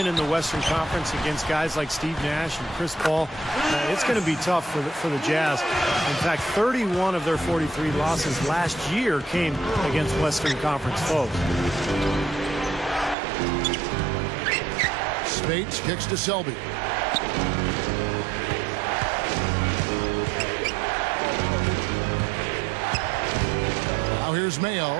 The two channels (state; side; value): drops out; left; at 13.2 s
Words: in the Western Conference against guys like Steve Nash and Chris Paul, it's going to be tough for the Jazz. In fact, 31 of their 43 losses last year came against Western Conference foes. Spates kicks to Selby. Now here's Mayo.